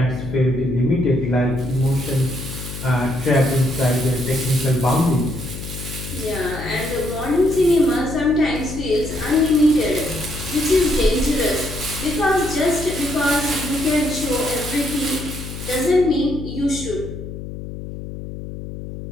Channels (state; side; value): noise; left; hum, 9 dB below the sound